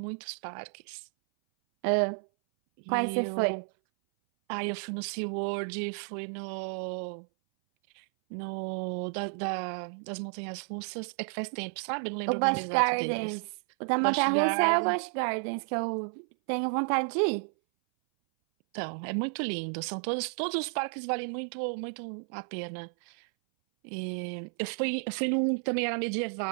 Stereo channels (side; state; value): left; silent; 57 dB below the other